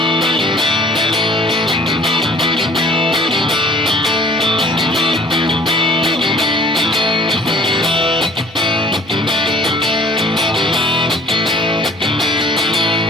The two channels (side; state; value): both; normal; correlation 0.52